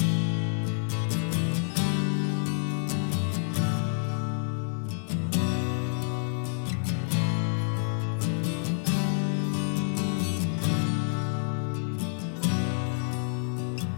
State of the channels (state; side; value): silent; right; 59 dB below the other